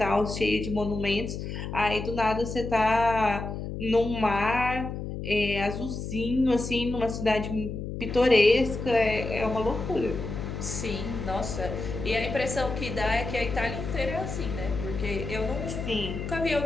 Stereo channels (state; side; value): noise; left; hum, 6 dB below the sound